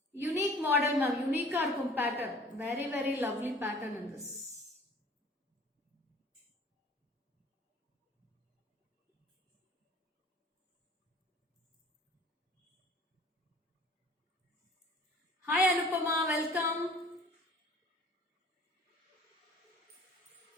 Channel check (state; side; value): normal; both; correlation 0.49